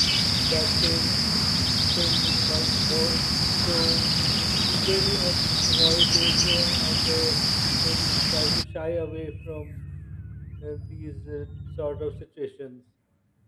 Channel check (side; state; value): both; identical; correlation 1.00